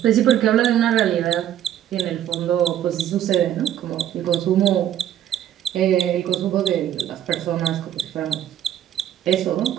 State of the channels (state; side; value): quieter; left; 11.1 dB